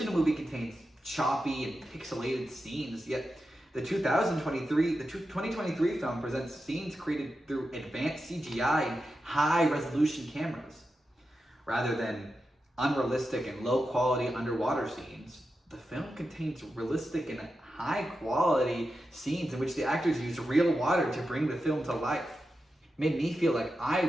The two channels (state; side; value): normal; both; correlation 0.90